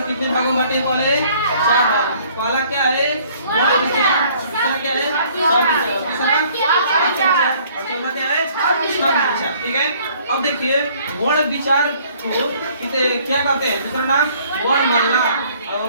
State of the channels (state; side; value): inverted; both; correlation -0.59